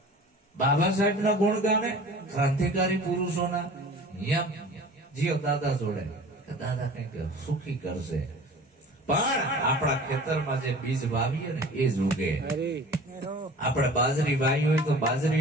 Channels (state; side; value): normal; both; correlation 0.42